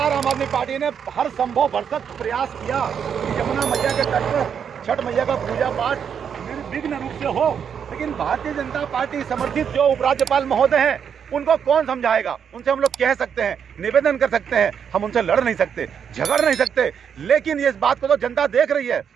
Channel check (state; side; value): quieter; left; 7.6 dB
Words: आम आदमी पार्टी ने हर संभव भरसक प्रयास किया कि यमुना मैया के तट पर छठ मैया का पूजा पाठ निर्विघ्न रूप से हो। लेकिन भारतीय जनता पार्टी समर्थित जो उपराज्यपाल महोदय हैं, उनको कौन समझाएगा? उनसे हम लोग कह सकते हैं, निवेदन कर सकते हैं, हम उनसे लड़ नहीं सकते, झगड़ नहीं सकते, लेकिन ये इस बात को तो जनता देख रही है,